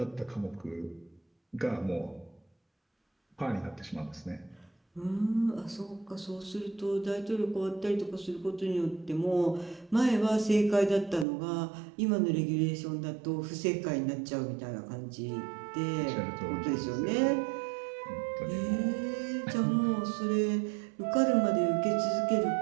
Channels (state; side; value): drops out; left; at 11.2 s